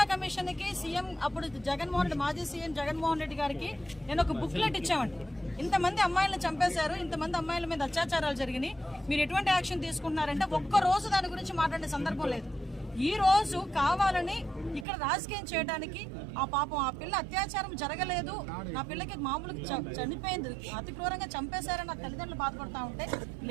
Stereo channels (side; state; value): left; drops out; at 14.9 s